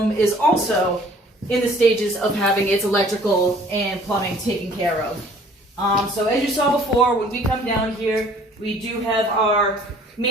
is also in the stages of having its electrical and plumbing taken care of. So as you saw before, when we come down here, we do have our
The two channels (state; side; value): normal; both; correlation 0.54